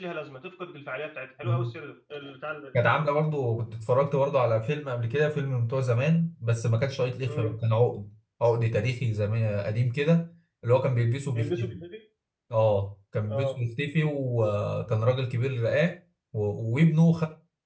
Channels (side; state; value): both; identical; correlation 1.00